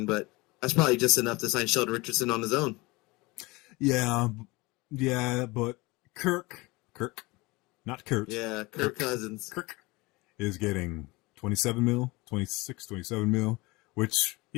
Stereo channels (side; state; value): right; quieter; 23.4 dB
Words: but that's probably just enough to sign Sheldon Richardson on his own. Yeah, but Kirk, not Kurt. Yeah, Kirk Cousins. Kirk is getting 27 mil, 26, 27 mil, which